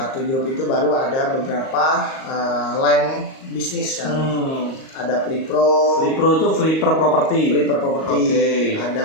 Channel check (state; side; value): late; right; 38 ms